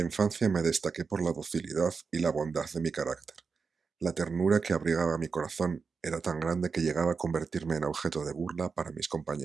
me destaqué por la docilidad y la bondad de mi carácter. La ternura que abrigaba mi corazón era tan grande que llegaba a convertirme en objeto de burla para mis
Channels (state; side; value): quieter; left; 5.2 dB